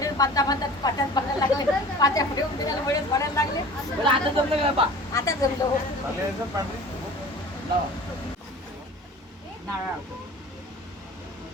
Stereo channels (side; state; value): both; normal; correlation 0.41